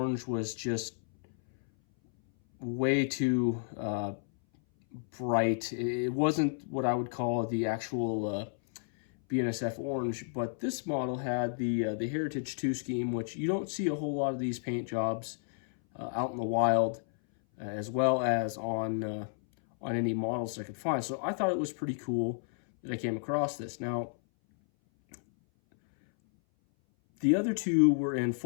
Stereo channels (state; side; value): silent; right; 57 dB below the other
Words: was just way too bright. It wasn't what I would call the actual BNSF orange, but this model had the Heritage 2 scheme, which you don't see a whole lot of these paint jobs out in the wild, as well as on any models I could find. So I thought it was pretty cool that I came across this. Now, the other 2 were in